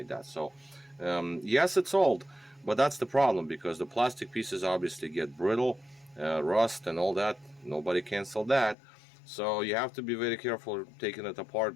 that. So yes, it's old, but that's the problem, because the plastic pieces obviously get brittle, rust and all that. Nobody canceled that. So you have to be very careful taking it apart,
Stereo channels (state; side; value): drops out; right; at 8.8 s